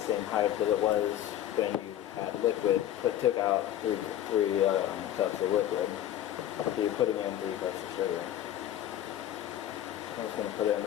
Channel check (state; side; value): quieter; right; 11.9 dB